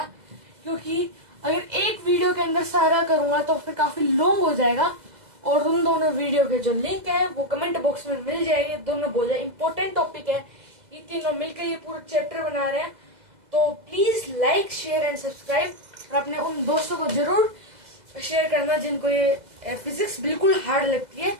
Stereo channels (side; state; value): left; late; 2.0 ms